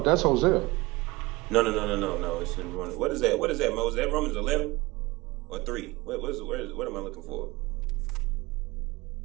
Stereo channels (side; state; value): left; quieter; 21.8 dB